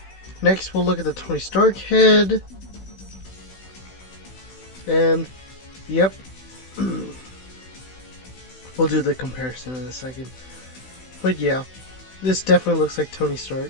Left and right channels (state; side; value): late; right; 16 ms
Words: Next, we'll look at the Tony Stark head. And, yep. We'll do the comparison in a second. But yeah, this definitely looks like Tony Stark.